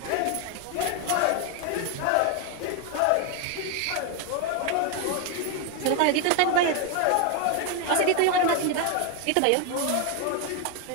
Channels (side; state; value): both; different; correlation 0.01